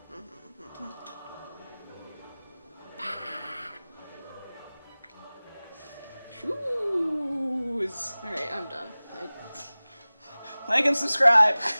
Shoes! Alright, I'm done. Like and subscribe!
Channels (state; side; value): inverted; both; correlation -0.99